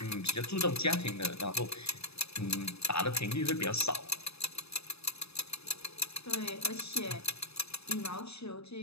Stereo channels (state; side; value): late; right; 0.79 ms